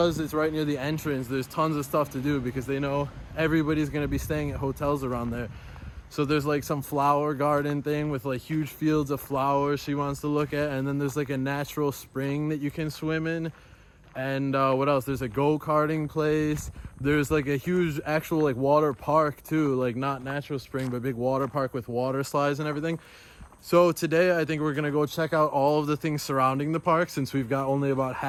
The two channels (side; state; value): both; identical; correlation 1.00